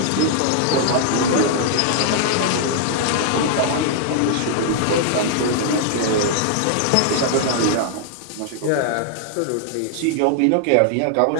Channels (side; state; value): both; different; correlation -0.01